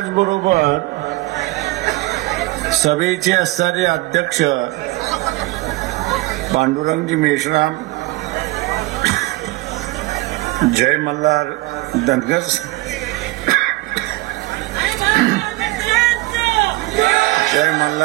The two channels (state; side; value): quieter; left; 20.4 dB